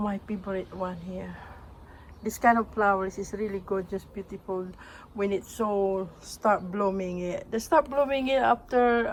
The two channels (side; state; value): both; identical; correlation 1.00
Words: favorite one here. This kind of flowers is really gorgeous, beautiful when it so start blooming. They start blooming it after